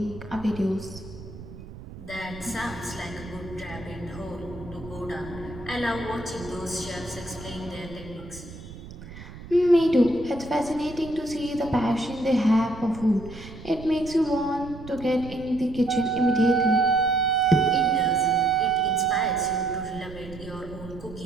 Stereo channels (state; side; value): noise; right; rumble, 15 dB below the sound